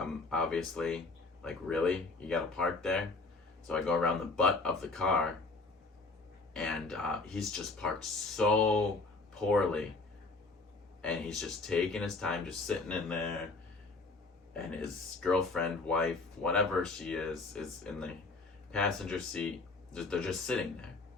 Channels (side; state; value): right; quieter; 3.6 dB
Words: like, really? You gotta park there? So I go around the butt of the car, and he's just parked so poorly. And he's just taking his time, just sitting in there. And his girlfriend, wife, whatever she is in the passenger seat. They're just sitting there.